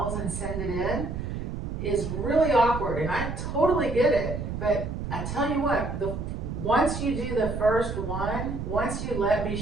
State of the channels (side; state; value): right; noise; rumble, 5 dB below the sound